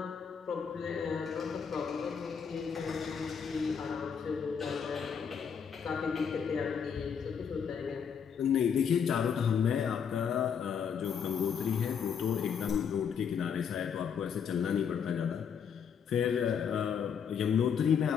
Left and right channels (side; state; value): right; quieter; 7.1 dB